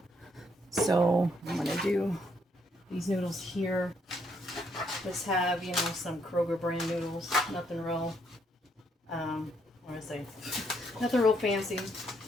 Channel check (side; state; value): both; normal; correlation 0.72